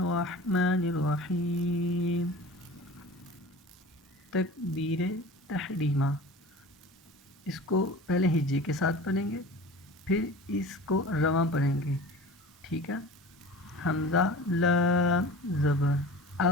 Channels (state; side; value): normal; both; correlation 0.38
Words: الرحیم. تکبیر تحریمہ، اس کو پہلے ہجے کے ساتھ پڑھیں گے، پھر اس کو رواں پڑھیں گے. ٹھیک ہے. حمزہ لام زبر